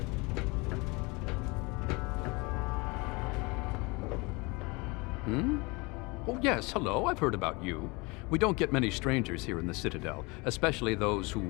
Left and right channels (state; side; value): quieter; right; 26.6 dB